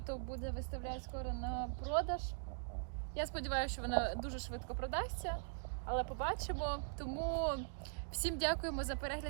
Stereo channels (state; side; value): silent; left; digital silence